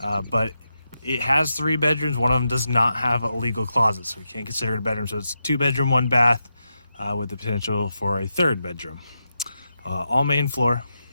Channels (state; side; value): inverted; both; correlation -0.87